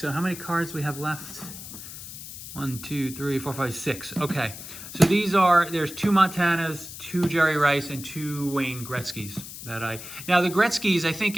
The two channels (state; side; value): noise; left; hiss, 12 dB below the sound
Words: how many cards we have left? 1, 2, 3, 4, 5, 6. Okay, so there's 2 Montanas, 2 Jerry Rice, and 2 Wayne Gretzky's that now the Gretzky's, I think